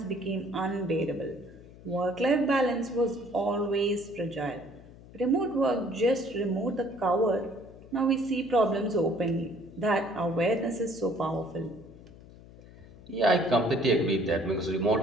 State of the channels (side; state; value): left; noise; hum, 20 dB below the sound